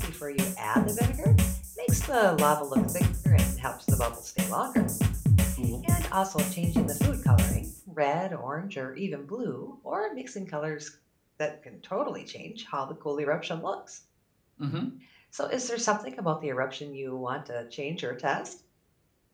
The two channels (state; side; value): identical; both; correlation 1.00